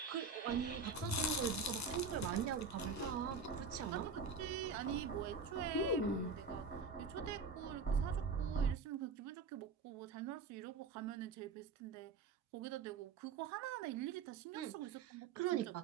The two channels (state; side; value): quieter; left; 4.8 dB